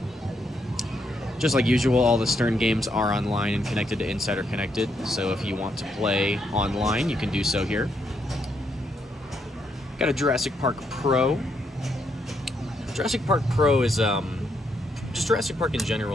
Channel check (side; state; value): both; normal; correlation 0.77